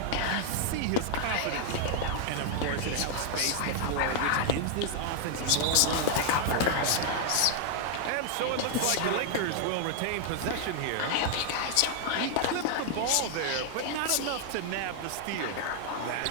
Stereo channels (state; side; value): different; both; correlation 0.00